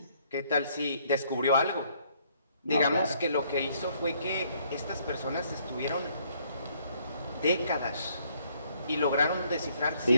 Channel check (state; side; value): inverted; both; correlation -0.67